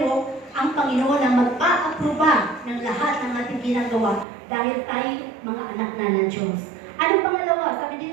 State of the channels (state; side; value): drops out; left; at 4.2 s